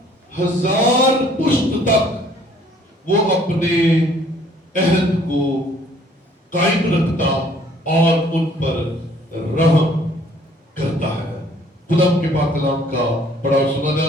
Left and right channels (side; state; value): both; normal; correlation 0.59